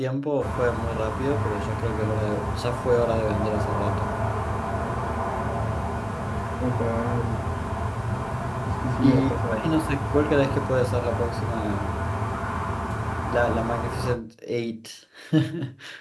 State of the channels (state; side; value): identical; both; correlation 1.00